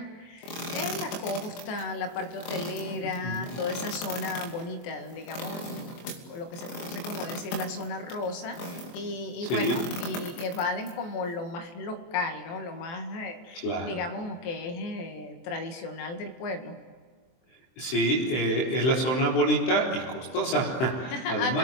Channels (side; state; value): right; late; 23 ms